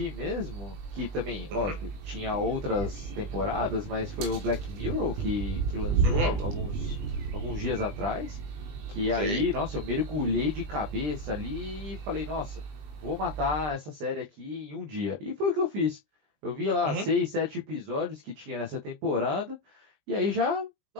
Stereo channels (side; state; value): left; late; 20 ms